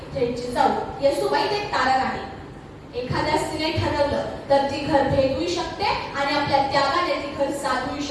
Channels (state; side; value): identical; both; correlation 1.00